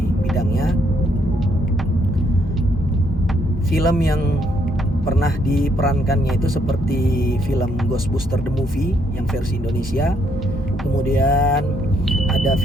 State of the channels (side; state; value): both; normal; correlation 0.72